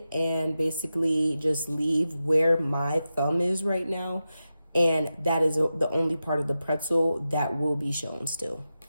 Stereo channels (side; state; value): both; inverted; correlation -0.91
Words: and basically just leave where my thumb is right now. And that is the only part of the pretzel that will be shown still.